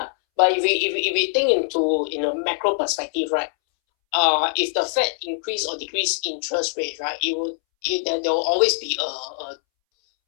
But if we think into in a macro perspective, right? If the Fed increase or decrease interest rate, right, there will always be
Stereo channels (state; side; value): silent; right; 64 dB below the other